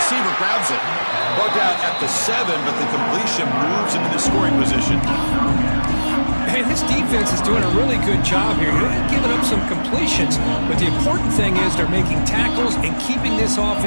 grabs it. Brought down at the 7, but the completion moves him into scoring position. And this defense is doing a really good job here. They're giving up some completions, but the important thing is they're making tackles and keeping this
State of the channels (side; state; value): both; inverted; correlation -1.00